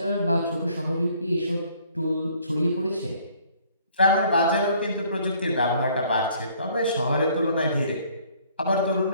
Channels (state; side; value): inverted; both; correlation -0.60